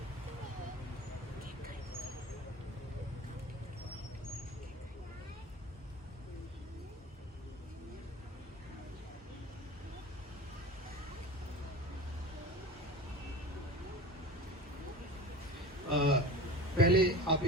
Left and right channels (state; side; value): normal; both; correlation 0.35